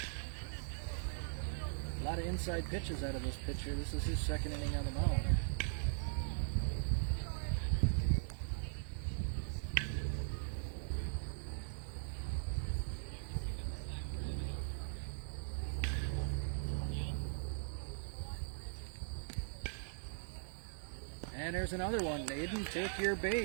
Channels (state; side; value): silent; left; digital silence